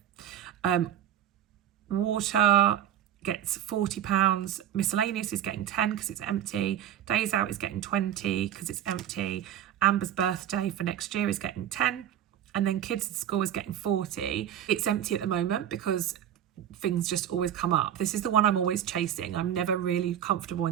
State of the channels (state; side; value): quieter; left; 10.7 dB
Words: Water gets £40. Miscellaneous is getting 10 because it's empty. Days out is getting 20 because it's empty. Amber's birthday for next year is getting 10. And then kids at school is getting 40. It's empty at the moment because things just always come up. This is the one I'm always chasing. I'm never really comfortable